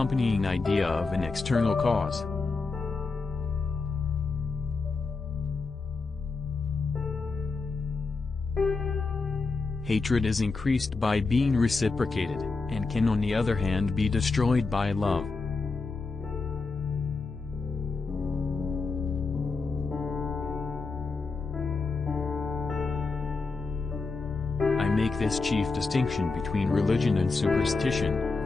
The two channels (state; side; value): quieter; right; 4.1 dB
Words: idea of an external cause. Hatred is increased by being reciprocated, and can on the other hand be destroyed by love. I make this chief distinction between religion and superstition,